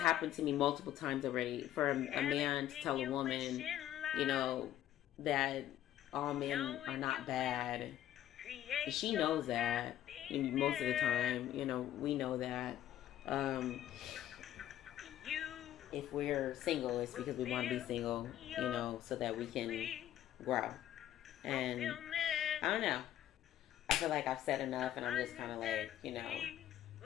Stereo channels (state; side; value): quieter; right; 12.3 dB